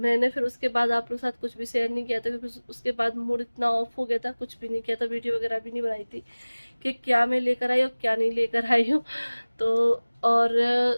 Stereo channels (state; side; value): inverted; both; correlation -1.00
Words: फिर उसके बाद आप लोग के साथ कुछ भी शेयर नहीं किया था, क्योंकि उसके बाद मूड इतना ऑफ हो गया था, कुछ भी नहीं किया था, वीडियो वगैरह भी नहीं बनाई थी कि क्या मैं लेकर आई और क्या नहीं लेकर आई हूँ। तो